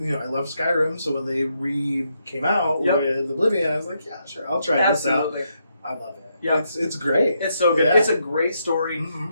Skyrim, so when they came out with Oblivion, I was like, yeah, sure, I'll try this out. I love it. Yeah, it's great. It's so good. Yeah. It's a great story,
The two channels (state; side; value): inverted; both; correlation -0.79